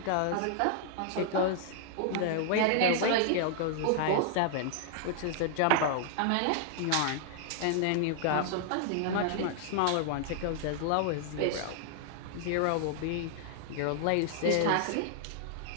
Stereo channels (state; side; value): different; both; correlation -0.01